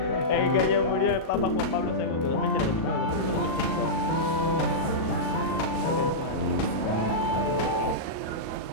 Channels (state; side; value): late; right; 37 ms